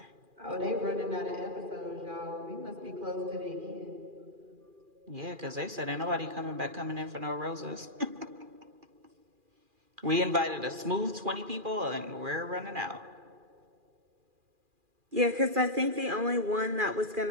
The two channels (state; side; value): late; left; 2.4 ms